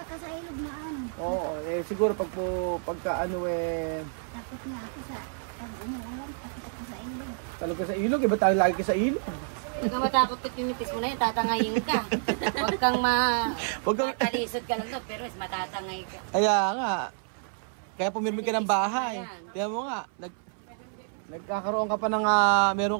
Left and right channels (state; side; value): silent; left; 59 dB below the other